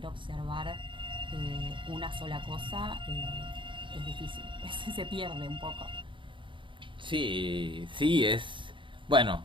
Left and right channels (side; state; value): left; late; 0.24 ms